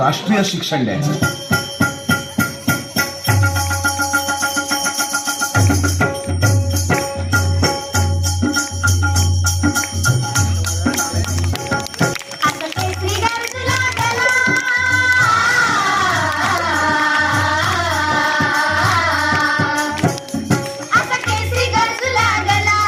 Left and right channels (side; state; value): both; identical; correlation 1.00